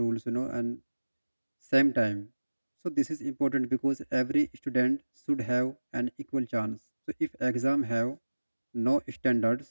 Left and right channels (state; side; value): inverted; both; correlation -1.00